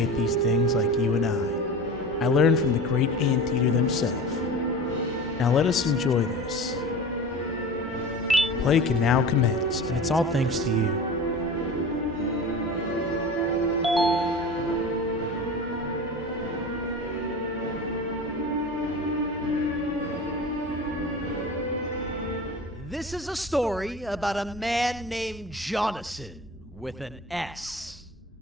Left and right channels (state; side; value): normal; both; correlation 0.34